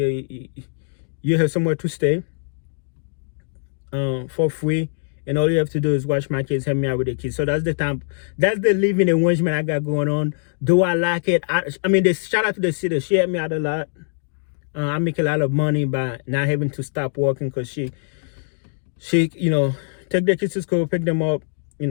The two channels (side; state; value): right; silent; digital silence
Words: You have somewhere to stay for free. And all you have to do is watch my kids, help me out with the kids. So that's the living arrangement I got going on. Do I like it? I mean, shout out to the city. She helped me out a lot. I make a lot of money by not having to stop working, because she take the kids to school, pick them up.